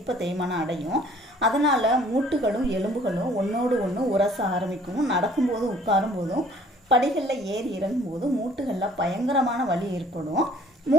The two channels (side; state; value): both; normal; correlation 0.56